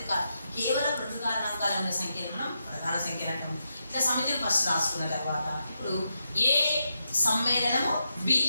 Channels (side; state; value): both; inverted; correlation -0.85